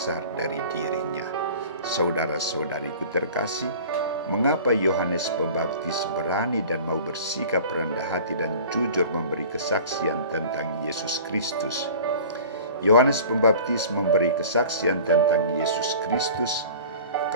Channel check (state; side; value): inverted; both; correlation -0.42